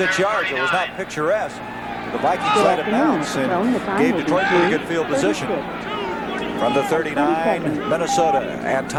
yards. It was not picturesque. The Vikings let it bounce and gave Detroit pretty good field position. From the 39, Minnesota and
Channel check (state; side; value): identical; both; correlation 1.00